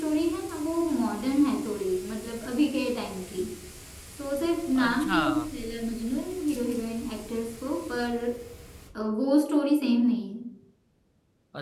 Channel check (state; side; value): identical; both; correlation 1.00